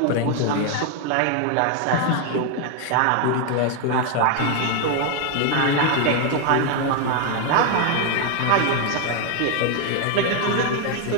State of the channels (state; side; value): different; both; correlation 0.01